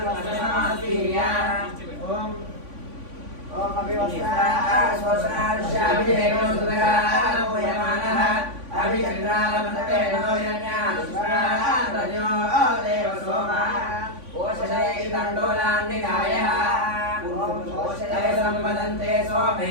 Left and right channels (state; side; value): late; left; 3.5 ms